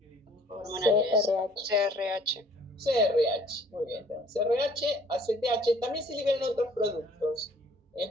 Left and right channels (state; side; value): normal; both; correlation 0.56